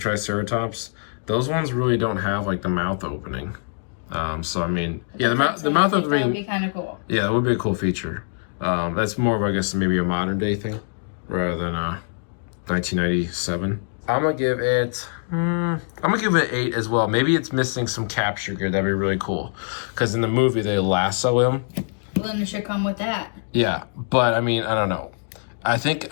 those ones really don't have like the mouth opening. So I mean, yeah, the mouth opening. That would be kind of cool. Yeah, that would be a cool feature. That's more of, I guess, maybe a modern day thing rather than 1997. I'm gonna give it. I'm gonna give it 8 as well. Maybe it's missing some capture gear. That'd be really cool, because in the movie they lasso him. Well, then it should come with that. Yeah, but I mean, I don't know. I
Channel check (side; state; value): right; silent; digital silence